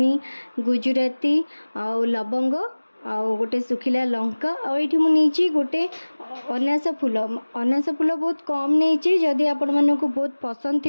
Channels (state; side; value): inverted; both; correlation -1.00